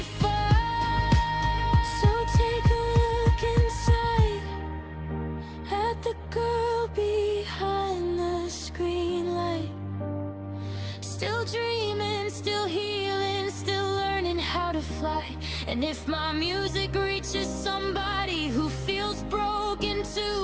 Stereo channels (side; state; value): both; identical; correlation 1.00